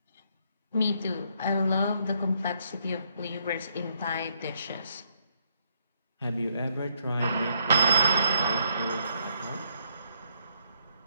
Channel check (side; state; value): both; inverted; correlation -0.73